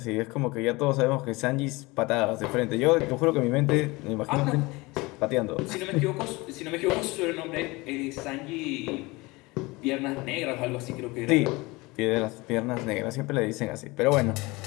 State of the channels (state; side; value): quieter; right; 23.2 dB